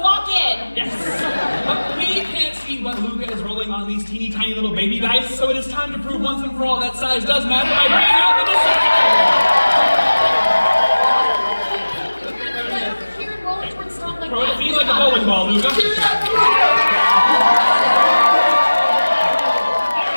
in. Yes! But we can't see what Luca is rolling on these teeny tiny little baby dice, so it is time to prove once and for all that size does matter by bringing out the decision! Here and roll towards Stomp like Throw it at that. me like a bowling ball, Luca.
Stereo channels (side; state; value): both; inverted; correlation -1.00